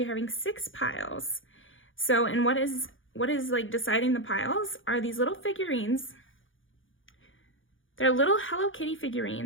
are having 6 piles. So, and what is like deciding the piles are these little figurines. They're little Hello Kitty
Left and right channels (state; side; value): late; right; 0.57 ms